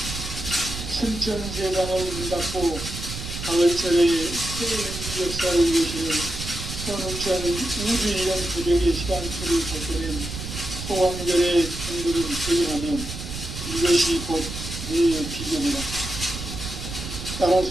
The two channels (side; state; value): right; noise; rumble, 8 dB below the sound